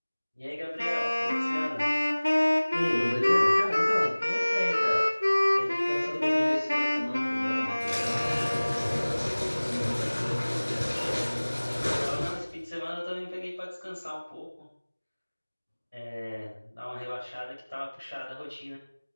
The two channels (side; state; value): both; inverted; correlation -1.00